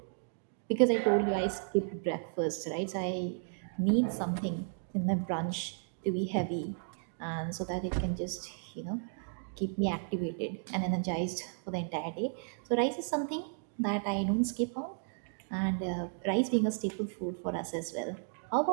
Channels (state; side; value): silent; left; digital silence